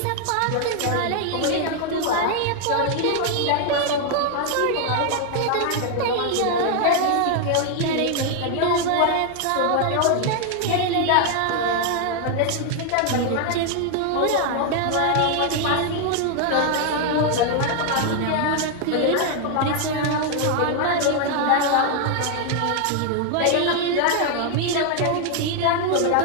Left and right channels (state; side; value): different; both; correlation 0.00